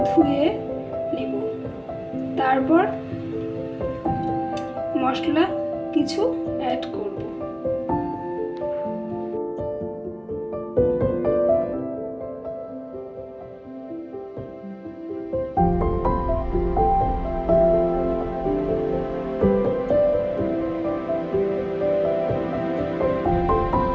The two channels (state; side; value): identical; both; correlation 1.00